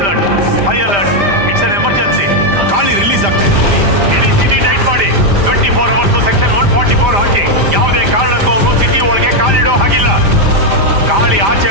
High alert. It's an emergency. ಗಾಳಿ ರಿಲೀಸ್ ಆಗ್ತಾ ಇದೆ. ಇಡೀ ಸಿಟಿ ಟೈಟ್ ಮಾಡಿ 24 hours ಸೆಕ್ಷನ್ 144 ಹಾಕಿ. ಯಾವುದೇ ಕಾರಣಕ್ಕೂ ಅವನು ಸಿಟಿ ಒಳಗೆ ಕಾಲಿಡೋ ಹಾಗಿಲ್ಲ. ಗಾಳಿ ಆಚೆ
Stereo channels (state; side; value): late; left; 5.0 ms